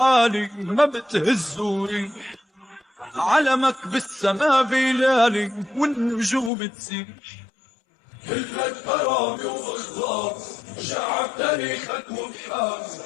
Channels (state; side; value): drops out; right; at 6.5 s